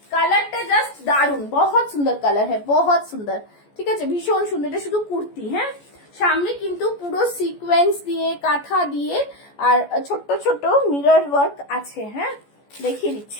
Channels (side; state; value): right; late; 14 ms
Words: কালারটা জাস্ট দারুন, बहुत সুন্দর কালার है, बहुत সুন্দর, ঠিক আছে, ভীষণ সুন্দর। এটা শুধু কুর্তি, হ্যাঁ, সামনে কিন্তু পুরো সিকোয়েন্স দিয়ে কাঁথা দিয়ে আর ছোট ছোট মিরর ওয়ার্ক আছে, হ্যাঁ, দেখিয়ে